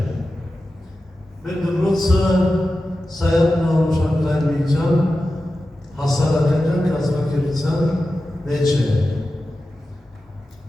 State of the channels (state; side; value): normal; both; correlation 0.93